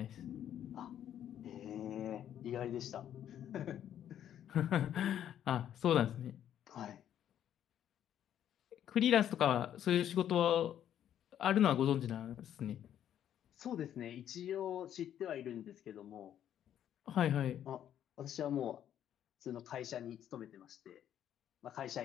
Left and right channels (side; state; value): right; quieter; 10.4 dB